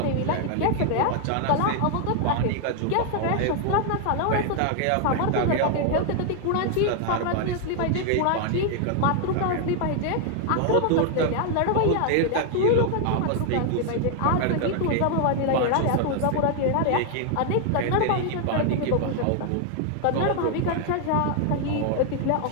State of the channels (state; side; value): different; both; correlation 0.00